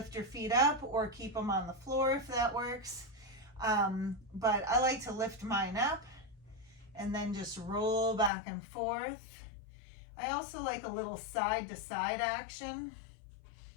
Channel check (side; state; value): right; drops out; at 8.3 s